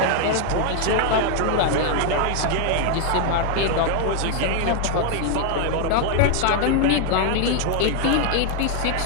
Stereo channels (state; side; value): different; both; correlation 0.00